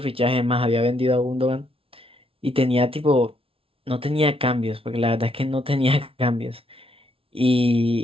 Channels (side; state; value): left; late; 0.26 ms